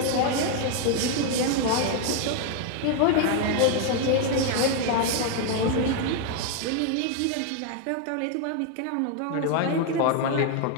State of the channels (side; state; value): both; different; correlation 0.01